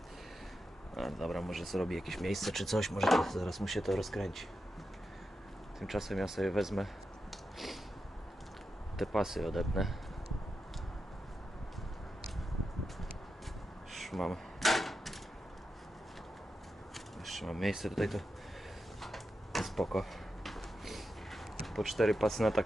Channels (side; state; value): both; normal; correlation 0.89